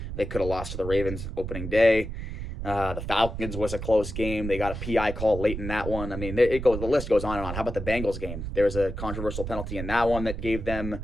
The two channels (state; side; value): noise; right; rumble, 6 dB below the sound